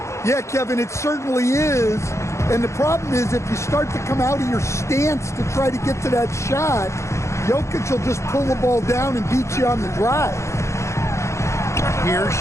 Yeah, Kevin, it certainly is. And the problem is if you start to come out of your stance to try to get to that shot, Jokic will just pull the ball down and beat you on the drive. Here's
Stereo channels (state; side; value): late; right; 0.14 ms